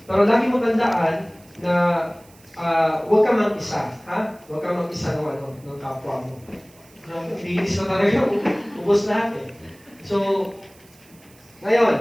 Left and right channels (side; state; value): right; noise; hiss, 27 dB below the sound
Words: Pero lagi mo tandaan na huwag ka mag-isa. Huwag ka mag-isa ng kapwa mo. Bilis na talaga, ubos lahat eh. So,